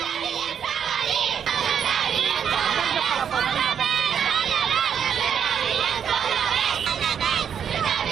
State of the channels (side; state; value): left; quieter; 8.0 dB